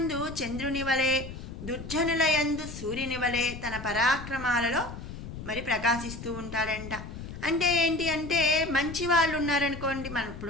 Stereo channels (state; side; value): noise; left; rumble, 11 dB below the sound